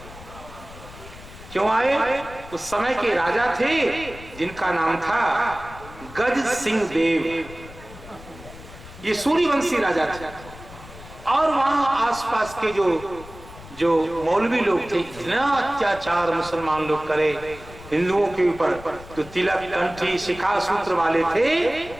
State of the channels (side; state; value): left; noise; rumble, 17 dB below the sound